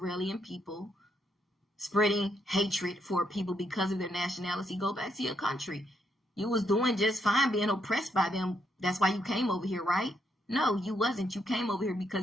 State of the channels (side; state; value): both; normal; correlation 0.77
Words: people, spreading hatred for people because of their nationality, go back to your country. You was doing just fine being oppressed by them. That's why you came over here, right? No, you wasn't. You came over here